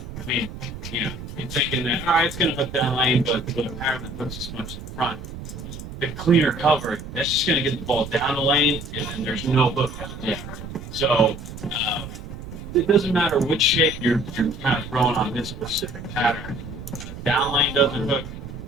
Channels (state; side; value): noise; right; rumble, 11 dB below the sound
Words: mean, you know, you're thinking that, all right, it's going to hook down lane, but apparently it hooks as much in front. The cleaner cover, that's just going to get the ball down the lane, and then there's no hook out there. So it doesn't matter which shape you're kind of throwing on this specific pattern. Down lane doesn't hook.